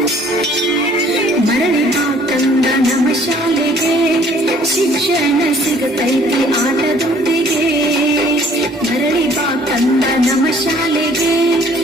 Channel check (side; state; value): both; normal; correlation 0.57